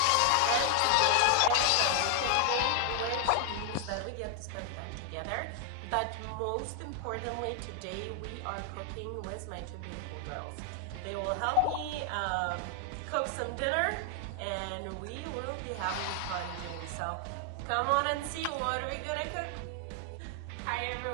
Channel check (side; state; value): both; different; correlation 0.00